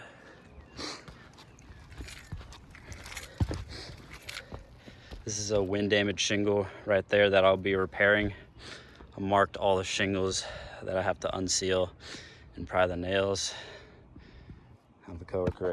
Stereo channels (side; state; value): both; identical; correlation 1.00